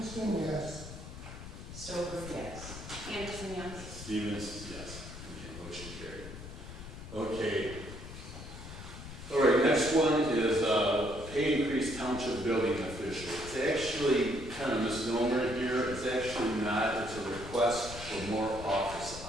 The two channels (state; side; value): noise; left; rumble, 12 dB below the sound